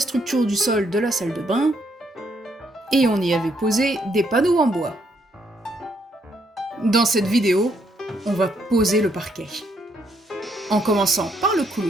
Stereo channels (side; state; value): both; normal; correlation 0.73